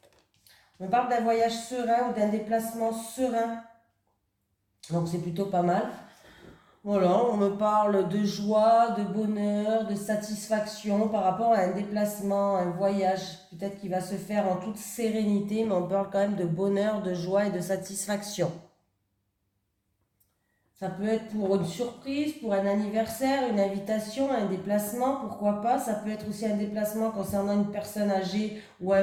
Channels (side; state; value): both; identical; correlation 1.00